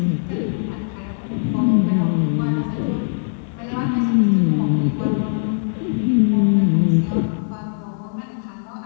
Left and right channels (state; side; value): silent; right; digital silence